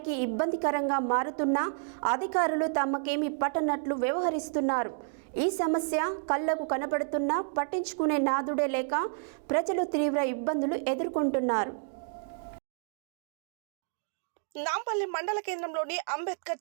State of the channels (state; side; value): silent; left; digital silence